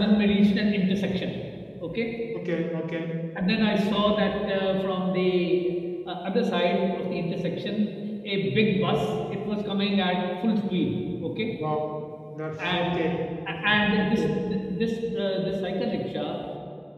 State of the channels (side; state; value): both; identical; correlation 1.00